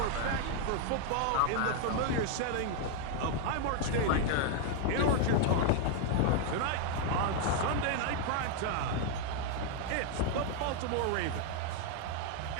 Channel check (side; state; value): both; different; correlation 0.00